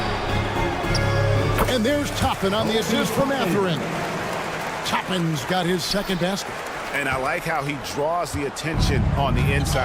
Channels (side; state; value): both; identical; correlation 1.00